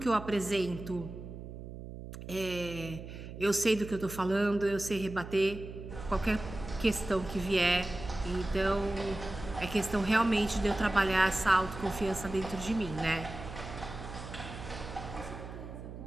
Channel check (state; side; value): noise; right; hum, 11 dB below the sound